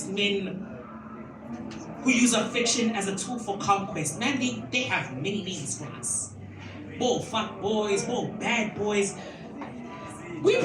men who use affection as a tool for conquest. Man, they have many names for us. More fuck boys, more bad boys. We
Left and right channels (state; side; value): identical; both; correlation 1.00